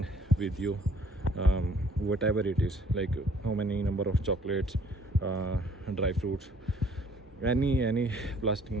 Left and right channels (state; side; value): normal; both; correlation 0.59